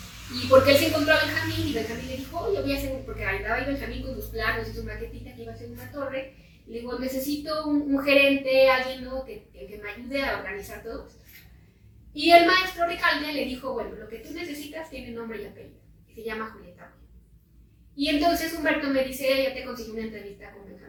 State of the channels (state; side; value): identical; both; correlation 1.00